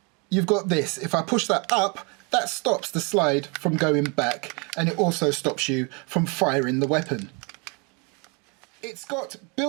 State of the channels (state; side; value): quieter; left; 32.3 dB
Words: you've got this. If I push that up, that stops the slide from going back, and it also stops you from firing the weapon. It's got